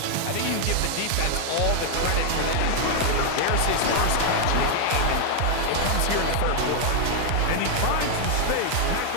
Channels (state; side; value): different; both; correlation 0.00